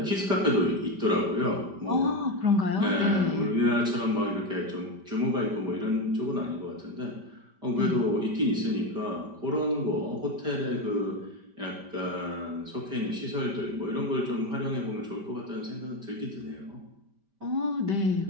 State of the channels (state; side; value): late; left; 5.1 ms